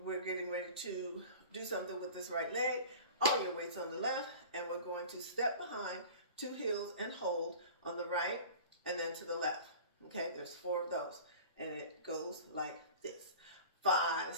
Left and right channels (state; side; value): inverted; both; correlation -0.39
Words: we're getting ready to do something with this right leg. All your weight's on the left, and we're going to step behind, 2 heels and hold on the right, and then to the left. Okay, there's 4 of those, and it goes like this. 5,